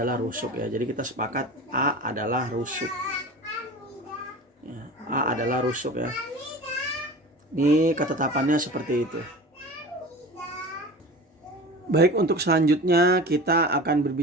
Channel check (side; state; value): both; normal; correlation 0.35